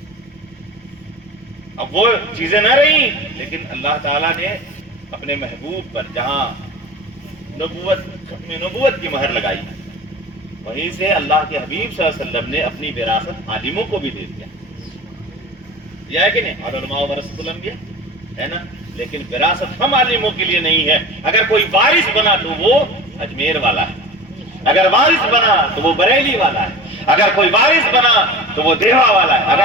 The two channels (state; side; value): normal; both; correlation 0.34